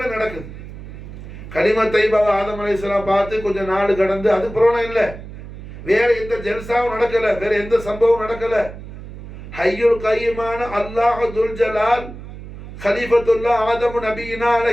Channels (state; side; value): noise; right; hum, 13 dB below the sound